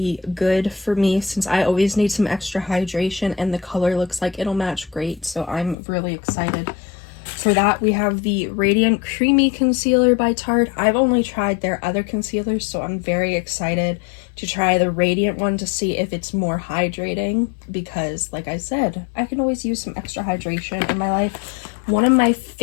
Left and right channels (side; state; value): right; drops out; at 5.8 s